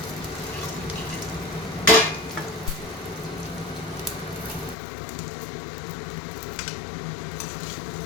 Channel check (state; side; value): drops out; right; at 4.8 s